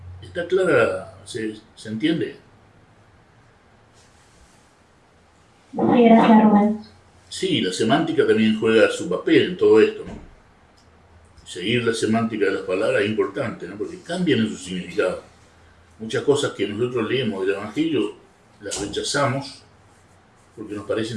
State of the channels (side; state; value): both; identical; correlation 1.00